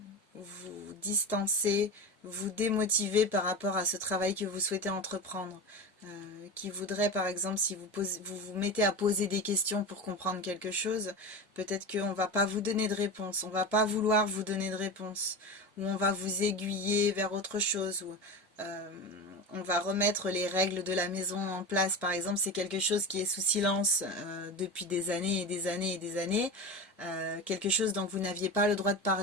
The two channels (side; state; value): both; normal; correlation 0.25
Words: vous distancer, vous démotiver par rapport à ce travail que vous souhaitez entreprendre. Qui voudraient, par exemple, si vous vous mettez à poser des questions pour comprendre quelque chose, peut-être qu'on ne va pas vous donner de réponse, on ne va pas vouloir vous donner de réponse, ou on va vous aiguiller vers autre chose, ou on va remettre les règles de la maison en place. Par exemple, c'est quelque chose qui est sous silence depuis des années et des années et des années, quelque chose dont vous n'aviez pas le droit de